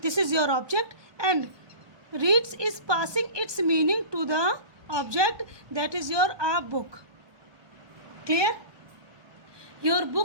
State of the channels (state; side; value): late; left; 1.2 ms